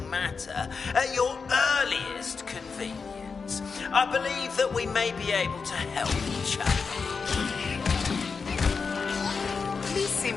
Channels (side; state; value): right; quieter; 5.1 dB